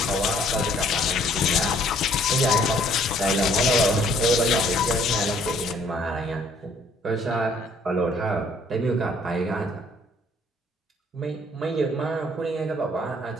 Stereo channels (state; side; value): normal; both; correlation 0.61